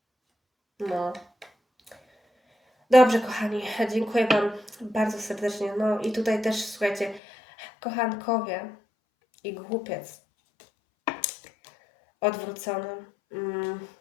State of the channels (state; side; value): drops out; right; at 7.2 s